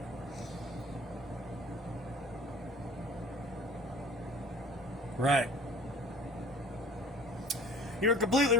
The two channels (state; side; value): normal; both; correlation 0.47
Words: Right. You're completely